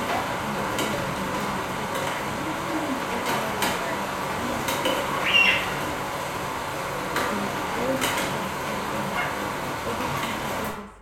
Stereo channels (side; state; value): both; identical; correlation 1.00